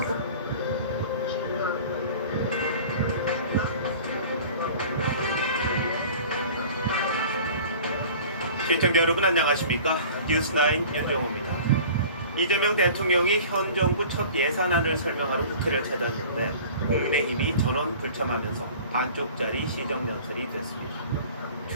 시청자 여러분 안녕하십니까? 뉴스9 윤정호입니다. 이재명 대통령이 현 정부 첫 예산안을 설명하러 국회를 찾았는데 국민의힘이 전원 불참하면서 반쪽짜리 시정연설이 됐습니다.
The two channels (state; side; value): inverted; both; correlation -0.43